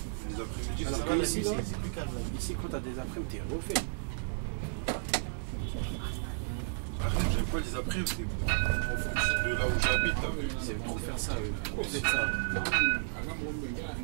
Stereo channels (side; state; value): left; silent; digital silence